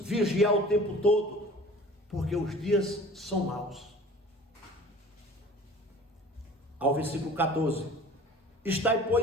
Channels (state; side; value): normal; both; correlation 0.44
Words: vigiar o tempo todo, porque os dias são maus. Ao versículo 14: estai,